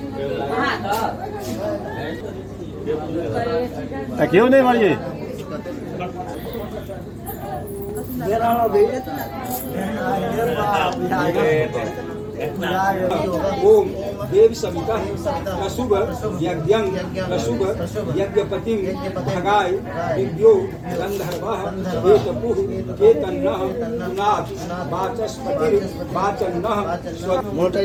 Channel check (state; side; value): identical; both; correlation 1.00